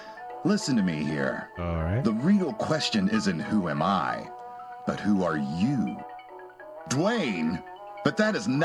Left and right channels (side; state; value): both; identical; correlation 1.00